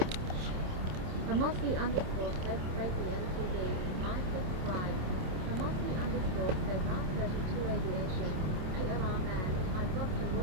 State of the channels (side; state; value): left; late; 27 ms